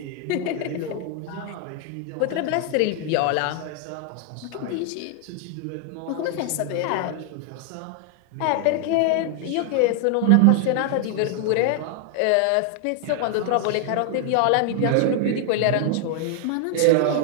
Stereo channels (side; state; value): both; different; correlation 0.00